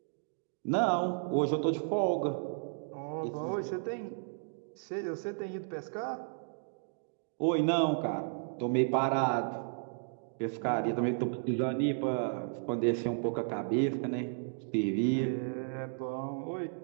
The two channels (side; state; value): left; silent; digital silence